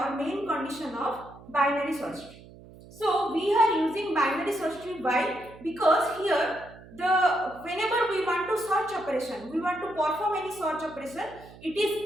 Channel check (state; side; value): noise; right; hum, 20 dB below the sound